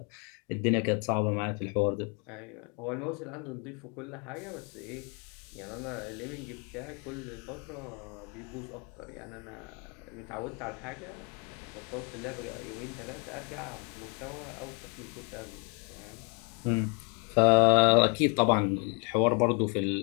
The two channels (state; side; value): quieter; right; 35.3 dB